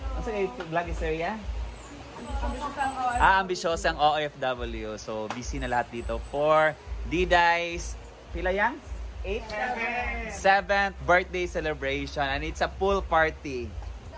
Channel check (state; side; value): identical; both; correlation 1.00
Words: Ano sa vlog ni si Rhea? Ambisyosang OFW. So busy na lahat dito for Diday's pila yang? 7th birthday celebration, and it's a pool party.